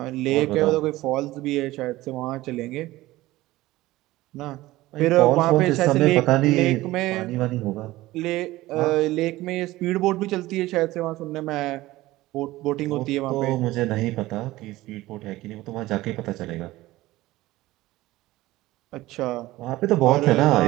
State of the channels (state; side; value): quieter; left; 17.7 dB